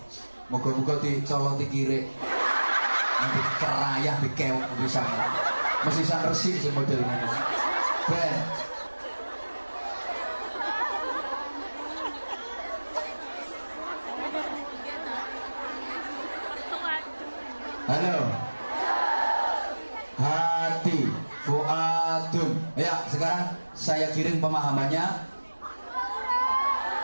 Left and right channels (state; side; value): inverted; both; correlation -1.00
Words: moga-moga dicoloti kiri nanti kerayah dikewok bisa mesti san resik si modelnya ben. Halo. Hati, fuadun. Ya, sekarang saya kirim pemahamannya.